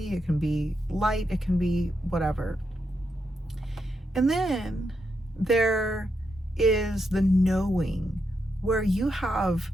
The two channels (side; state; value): both; normal; correlation 0.83